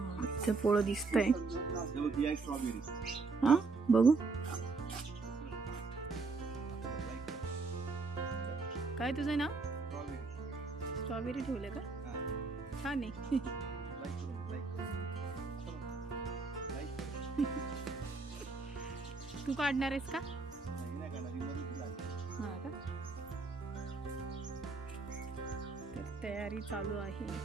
इथे पोळं दिसतंय. हा बघू काय तुझं नाव? स्ट्रॉबेरी ठेवलं का? छान आहे. तू काढणार आहेस का? हा का? तर तयारी चालू आहे.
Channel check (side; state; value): left; quieter; 4.1 dB